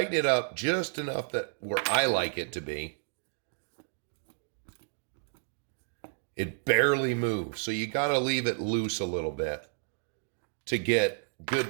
it up just enough that where I like it to be, it barely moves. So you got to leave it loose a little bit to get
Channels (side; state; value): left; silent; digital silence